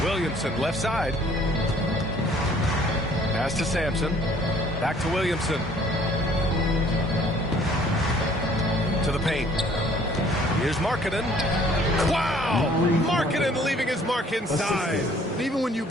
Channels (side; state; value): both; normal; correlation 0.57